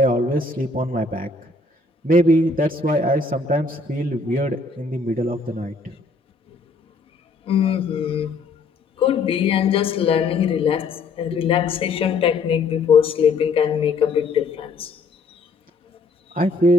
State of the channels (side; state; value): right; quieter; 3.7 dB